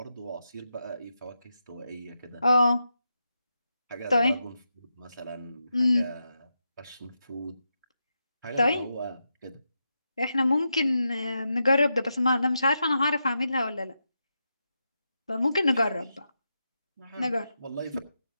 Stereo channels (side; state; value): both; inverted; correlation -0.87